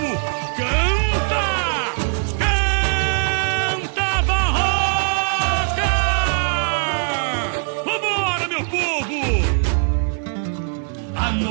Canta! Canta, Barroca! Vambora, meu povo!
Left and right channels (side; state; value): left; silent; 56 dB below the other